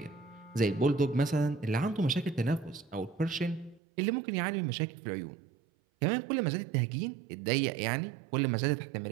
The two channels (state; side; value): drops out; left; at 3.8 s